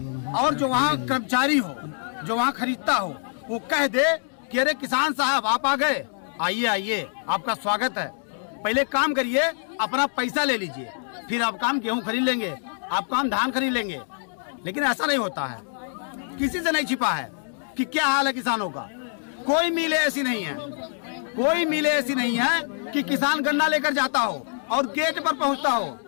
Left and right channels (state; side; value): silent; right; digital silence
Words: और जो वहाँ कर्मचारी हो, जो वहाँ खरीदता हो, वो कह दे कि अरे किसान साहब आप आ गए, आइए, आपका स्वागत है, पहले काम करिए, अपना पैसा ले लीजिए, फिर आप काम गेहूं खरीद लेंगे, आप काम धान खरीद लेंगे। लेकिन ऐसा नहीं होता है, किसी से नहीं छिपा है कि क्या हाल है किसानों का। कोई मिले ऐसी नहीं है कि किसान गन्ना लेकर जाता हो और गेट पर पहुंचता हो।